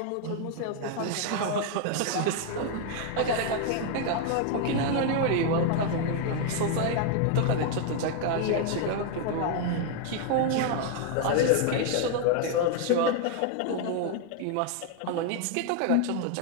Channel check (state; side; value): different; both; correlation 0.00